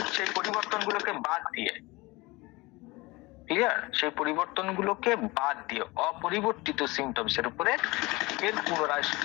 সেই পরিবর্তন গুলোকে বাদ দিয়ে, ক্লিয়ার, সেই পরিবর্তন গুলোকে বাদ দিয়ে অপরিবর্তিত সিমটমস এর উপরে এর পুনরায়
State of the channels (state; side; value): quieter; right; 22.8 dB